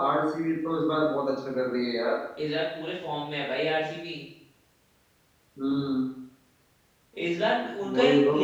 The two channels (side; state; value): both; identical; correlation 1.00